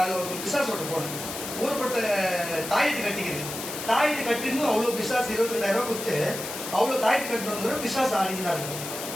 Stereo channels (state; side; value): noise; left; hiss, 8 dB below the sound